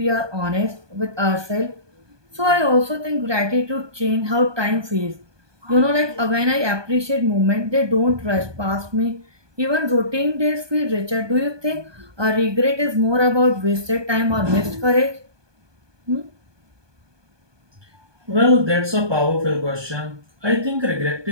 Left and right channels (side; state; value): left; late; 1.2 ms